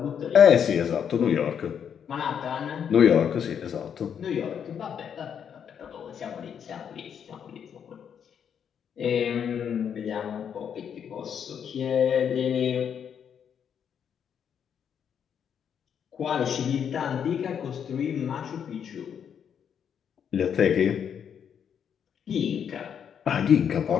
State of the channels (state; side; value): quieter; right; 8.0 dB